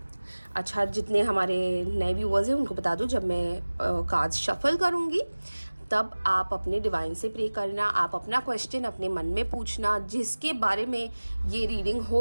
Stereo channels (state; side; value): inverted; both; correlation -1.00